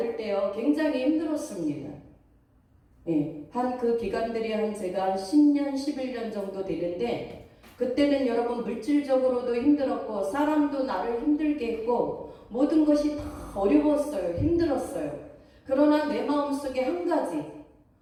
때요 굉장히 힘들었습니다. 예, 한 그 기간들이 제가 10년, 11년 정도 되는데 그때는 여러분 물질적으로도 힘들었고 사람도 나를 힘들게 했고 모든 것이 다 어려웠어요. 힘들었어요. 그러나 내 마음속에 한 가지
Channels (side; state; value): both; identical; correlation 1.00